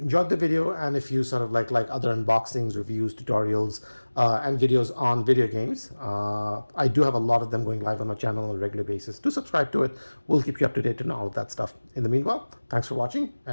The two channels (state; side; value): inverted; both; correlation -1.00